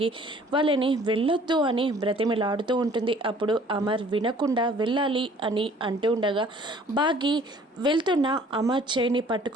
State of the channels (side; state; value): both; normal; correlation 0.54